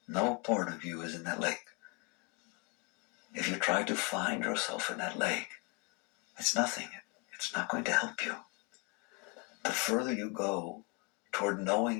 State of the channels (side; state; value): right; quieter; 30.3 dB